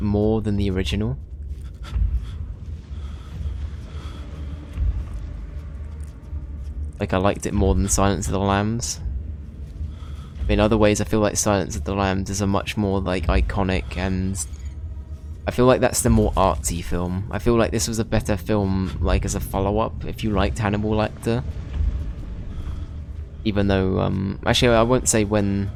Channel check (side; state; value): both; identical; correlation 1.00